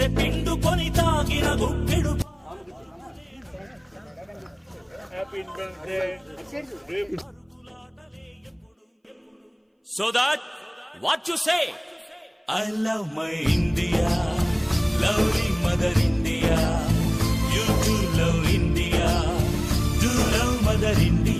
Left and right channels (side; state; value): both; identical; correlation 1.00